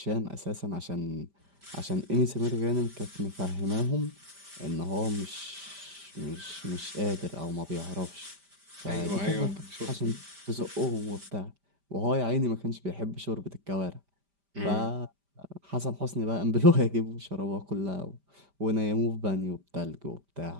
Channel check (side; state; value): left; late; 5.1 ms